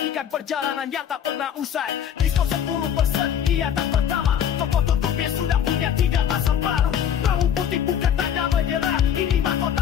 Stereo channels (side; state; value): right; quieter; 9.1 dB